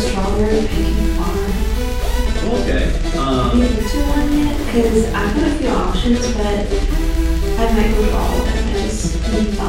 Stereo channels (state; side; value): identical; both; correlation 1.00